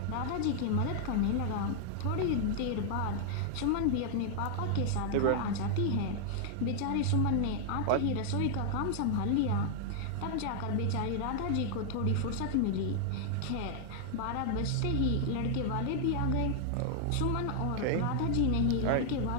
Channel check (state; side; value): different; both; correlation -0.01